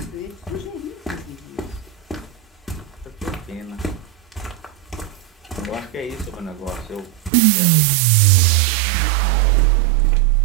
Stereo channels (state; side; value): drops out; left; at 7.3 s